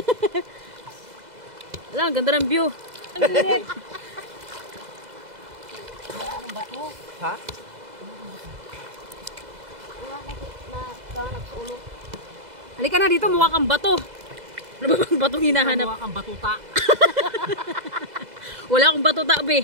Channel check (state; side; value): late; left; 2.0 ms